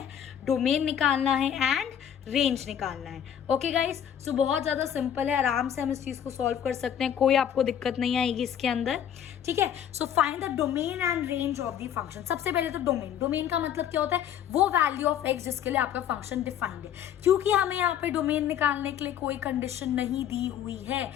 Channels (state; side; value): quieter; right; 9.6 dB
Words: डोमेन निकालना है एंड रेंज निकालना है। ओके गाइज, सो बहुत ज़्यादा सिंपल है, आराम से हम इस चीज़ को सॉल्व कर सकते हैं, कोई आपको दिक्कत नहीं आएगी इसके अंदर, ठीक है। So find the domain and range of the function. सबसे पहले तो डोमेन, डोमेन का मतलब क्या होता है, वो वैल्यू ऑफ एक्स जिसके लिए आपका फंक्शन डिफाइंड है। क्योंकि हमें यहाँ पे डोमेन निकालने के लिए कोई कंडीशन नहीं दी हुई है,